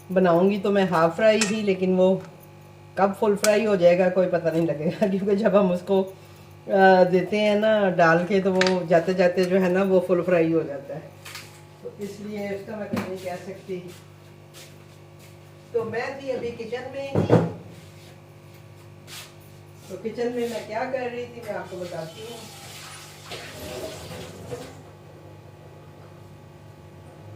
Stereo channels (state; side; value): identical; both; correlation 1.00